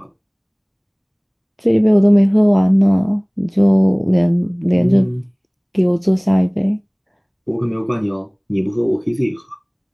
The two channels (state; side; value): identical; both; correlation 1.00